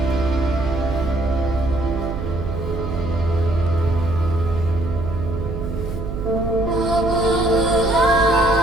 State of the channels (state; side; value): noise; right; hum, 6 dB below the sound